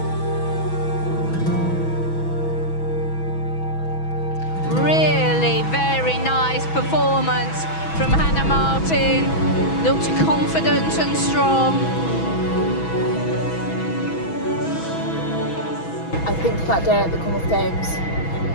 Really very nice performance from Hannah Martin. Looked confident and strong. I think that day at the Commonwealth Games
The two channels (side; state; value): right; late; 6.1 ms